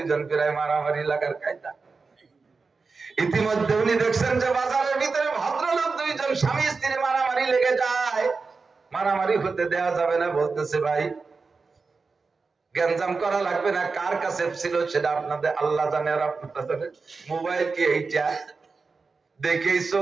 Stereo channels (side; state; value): left; quieter; 4.4 dB